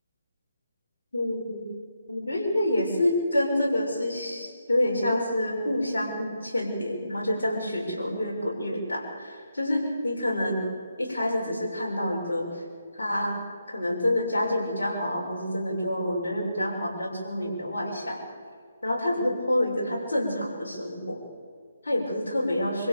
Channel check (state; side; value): inverted; both; correlation -0.84